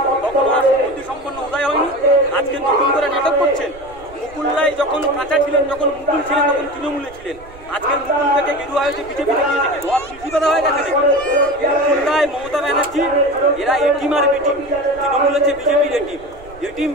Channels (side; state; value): right; noise; rumble, 21 dB below the sound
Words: তখন আর বুদ্ধি সম্পন্ন উদয় হয়নি। আজকে নতুন করে নাটক করছেন। মুকুল্লাই যখন কাঁচা ছিলেন, যখন মুকুল ছিলেন, তখন তৃণমূলে ছিলেন। আজকের মুকুল থেকে গেরুয়া হয়েছে বিজেপিতে গিয়ে থেকে ধোয়া কৃষিকতা হয়ে গেছে দেখি। মুকুল্লাই, মমতা ব্যানার্জি এরা এটিম আর বিটিম। তৃণমূল হচ্ছে বিজেপির এটিম। এটিম